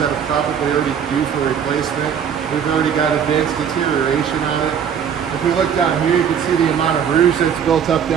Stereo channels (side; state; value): left; quieter; 7.9 dB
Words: that are probably already due for replacement. We've already got advanced deterioration on it. If we look down here, you can see the amount of rouge that's built up